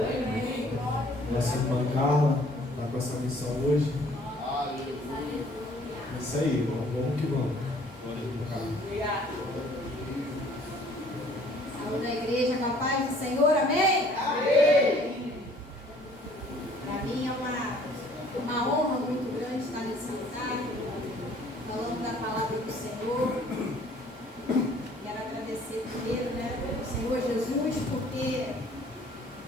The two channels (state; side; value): normal; both; correlation 0.57